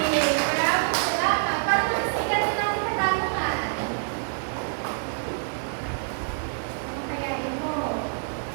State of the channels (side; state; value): left; silent; 61 dB below the other